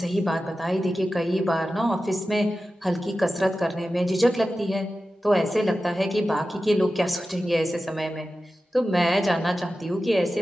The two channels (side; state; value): both; normal; correlation 0.94